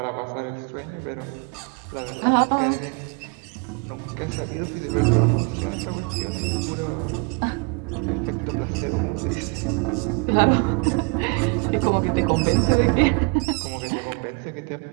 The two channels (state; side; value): quieter; left; 32.7 dB